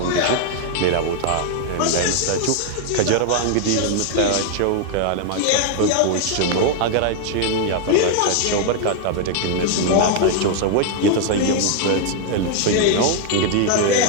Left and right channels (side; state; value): both; different; correlation 0.00